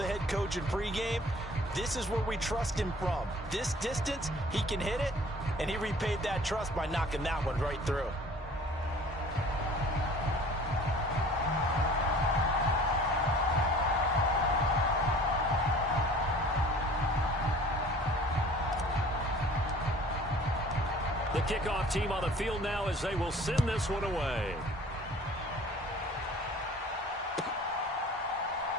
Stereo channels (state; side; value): normal; both; correlation 0.49